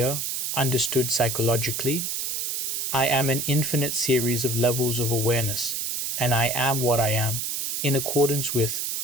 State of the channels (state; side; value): noise; right; hiss, 2 dB below the sound